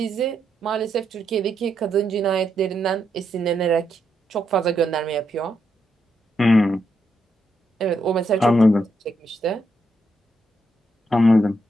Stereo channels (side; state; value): both; normal; correlation 0.80